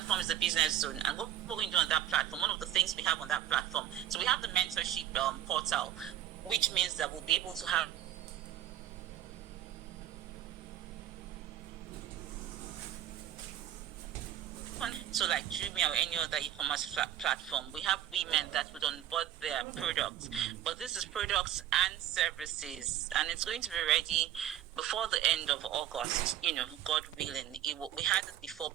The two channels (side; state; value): left; quieter; 11.6 dB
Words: is the Business Zone. And what we're going to do on that platform, one of the things we have on that platform, so we have the mentorship portal, which means that we'll be able to have so like Jumia or any other e-commerce platform. We have women that would onboard their products, but this is products and services, and it's going to be ready before the end of August, God willing. We had it before,